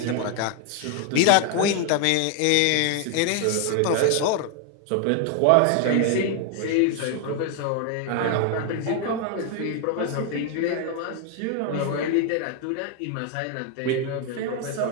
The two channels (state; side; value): different; both; correlation 0.01